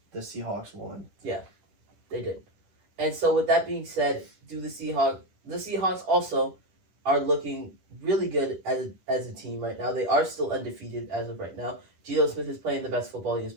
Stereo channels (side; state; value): left; late; 10 ms